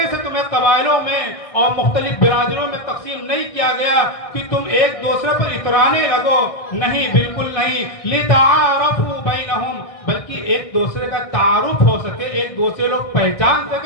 سے تمہیں قبائلوں میں اور مختلف برادریوں میں تقسیم نہیں کیا گیا کہ تم ایک دوسرے پر اترانے لگو. نہیں، بالکل نہیں. لِتَعَارَفُوا بَيْنَهُمْ، بلکہ ایک دوسرے کا تعارف ہو سکے، ایک دوسرے لوگ پہچان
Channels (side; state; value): right; late; 1.6 ms